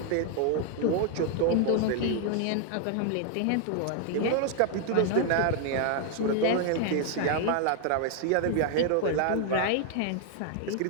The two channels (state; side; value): different; both; correlation 0.00